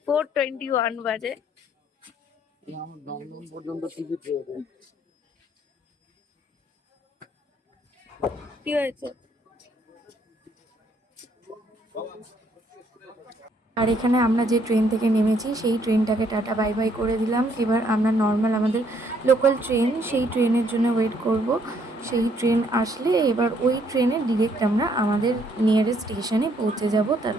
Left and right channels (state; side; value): normal; both; correlation 0.68